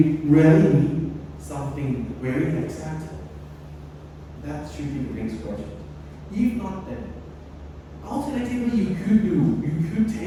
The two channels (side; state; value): both; identical; correlation 1.00